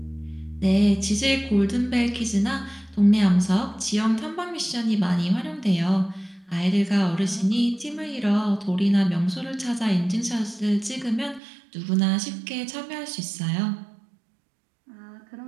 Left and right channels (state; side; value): drops out; left; at 11.4 s